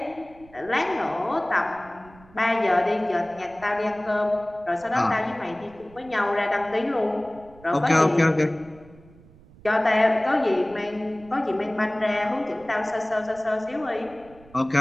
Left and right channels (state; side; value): noise; right; rumble, 24 dB below the sound